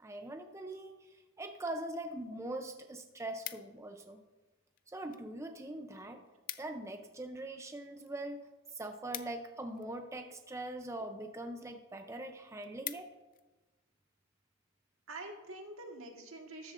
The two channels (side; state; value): both; normal; correlation 0.43